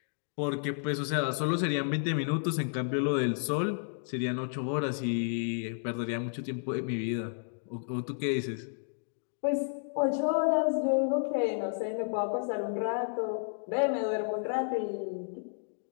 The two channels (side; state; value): right; silent; digital silence